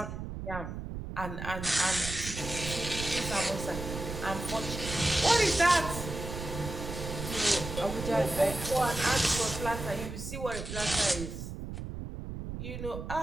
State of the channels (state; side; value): noise; right; rumble, 7 dB below the sound